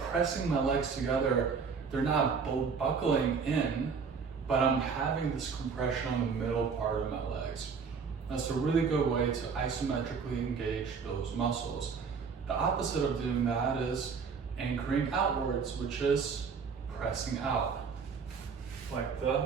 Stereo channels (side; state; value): left; quieter; 5.6 dB